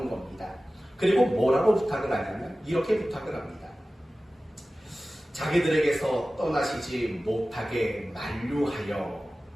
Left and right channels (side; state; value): both; normal; correlation 0.96